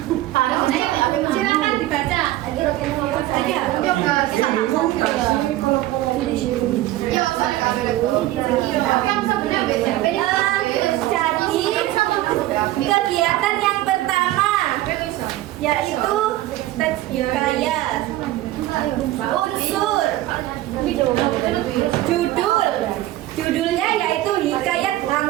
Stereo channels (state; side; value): quieter; left; 15.6 dB